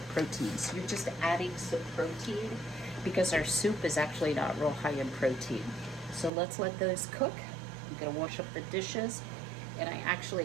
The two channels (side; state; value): left; drops out; at 6.3 s